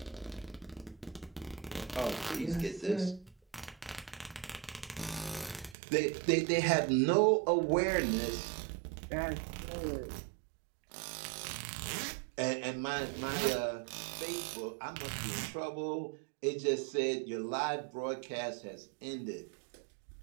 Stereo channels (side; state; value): left; drops out; at 5.8 s